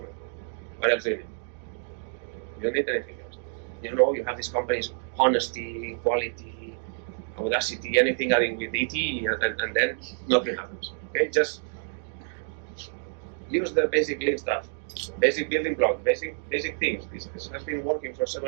What else do you need? You don't need anything else. You have these companies, honesty, quality, audacity, anything adding with ET, and then nothing happens. Okay, just use the basic Lean stuff. Basic building blocks, basic things. This has been working for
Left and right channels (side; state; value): left; silent; 59 dB below the other